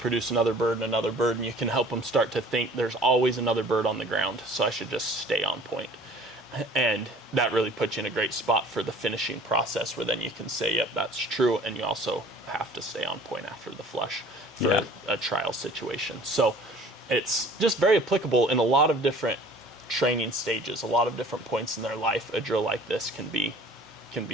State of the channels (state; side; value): normal; both; correlation 0.49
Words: another bird, and you can help them start to think there's always another bird on the ground, so I should just stay on point. And that really puts you in a great spot for the finishing process, where then you can say, yep, that's true, and you also have to stay on point after the flush for a trial situation. So it's just very applicable in a lot of different training stages, a lot of different points in their life. A drill like this can be